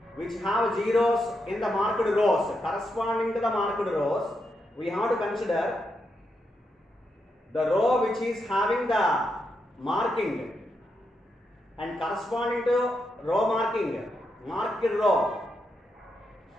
which have zeros in the marked rows. Corresponding to the marked rows, we have to consider the row which is having the marking and corresponding to row marking, marked row.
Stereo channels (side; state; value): both; normal; correlation 0.83